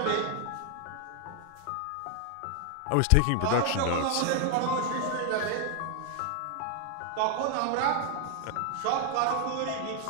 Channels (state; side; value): different; both; correlation 0.00